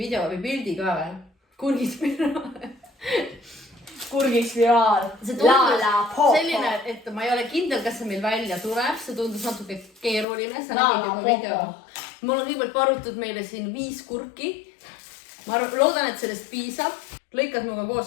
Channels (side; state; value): right; drops out; at 10.2 s